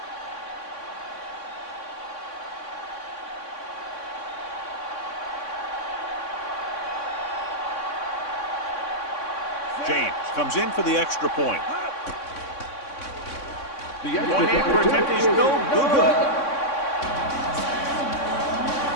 James comes in for the extra point. The point-anchor attempt is no good.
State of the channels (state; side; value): late; right; 3.6 ms